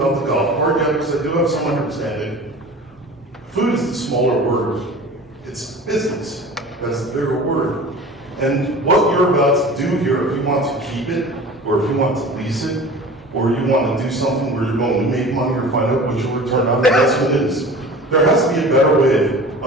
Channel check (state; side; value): normal; both; correlation 0.39